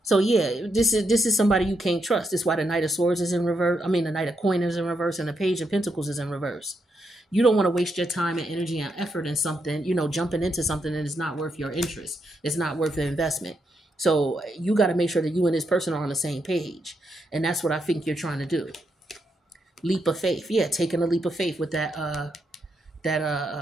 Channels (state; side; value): normal; both; correlation 0.81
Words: So yeah, this is somebody you can't trust. This is why the Knight of Swords is in reverse. I mean, the Knight of Coin is in reverse, and the Page of Pentacles is in reverse. You don't want to waste your time and energy and effort in something, jumping into something that is not worth your interest. It's not worth the investment. So you got to make sure that you and this person are on the same page, and that's what I think you're trying to do. Leap of faith, yeah, taking a leap of faith with that